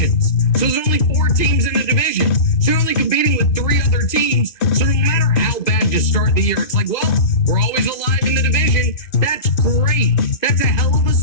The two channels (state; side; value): late; right; 2.5 ms